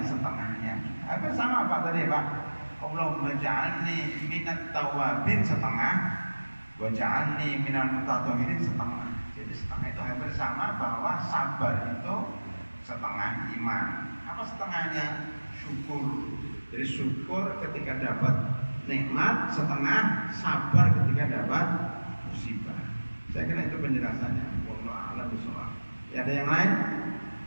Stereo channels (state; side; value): inverted; both; correlation -1.00